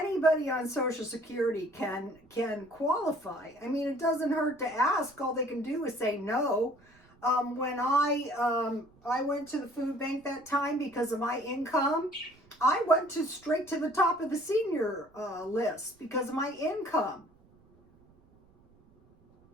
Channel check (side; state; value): right; noise; rumble, 30 dB below the sound